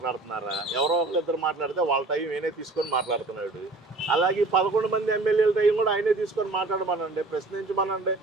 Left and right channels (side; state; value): left; quieter; 3.2 dB